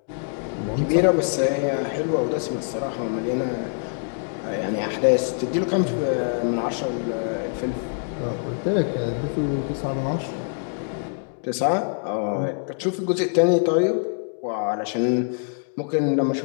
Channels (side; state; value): right; silent; digital silence